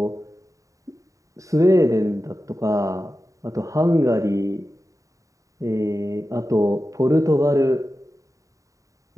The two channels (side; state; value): left; late; 0.16 ms